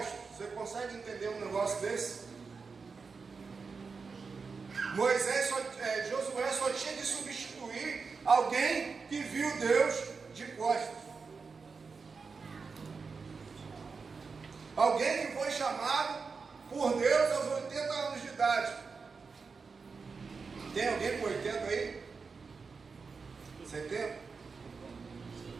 Você consegue entender um negócio desse? Josué só tinha de substituir alguém que viu Deus de costas. Alguém que foi chamado por Deus aos 80 anos de idade. Tem alguém com 80 aí? 70?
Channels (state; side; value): quieter; left; 4.9 dB